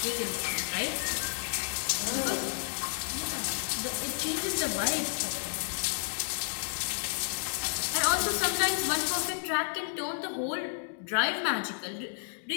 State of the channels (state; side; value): silent; right; digital silence